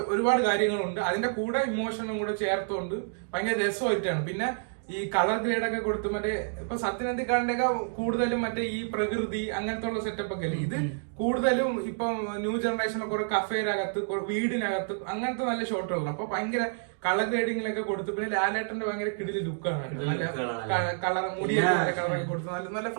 ഒരുപാട് കാര്യങ്ങളുണ്ട്. അതിന്റെ കൂടെ ഇമോഷനും കൂടെ ചേർത്തുകൊണ്ട് ഭയങ്കര രസമായിട്ടാണ്. പിന്നെ ഈ കളർ ഗ്രേഡ് ഒക്കെ കൊടുത്ത് മറ്റേ ഇപ്പൊ സത്യനന്ദിക്കാടിന്റെ ഒക്കെ കൂടുതലും മറ്റേ ഈ പ്രകൃതി അങ്ങനത്തെ ഉള്ള സെറ്റപ്പ് ഒക്കെ അല്ലേ. ഇത് കൂടുതലും ഇപ്പം ന്യൂ ജനറേഷനൊക്കെ കുറെ കഫേനകത്ത് വീടിനകത്ത് അങ്ങനത്തെ നല്ല ഷോട്ടുകളാണ്. അപ്പൊ ഭയങ്കര കളർ ഗ്രേഡിങ്ങിലൊക്കെ കൊടുത്ത് പിന്നെ ലാലേട്ടന്റെ ഭയങ്കര കിടില് ലുക്കാണ്. നല്ല കളർ മുടിയൊക്കെ കളറൊക്കെ കൊടുത്ത് നല്ല നല്ല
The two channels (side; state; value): left; silent; digital silence